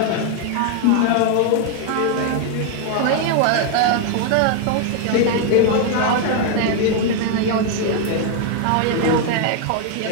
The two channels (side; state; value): both; different; correlation 0.00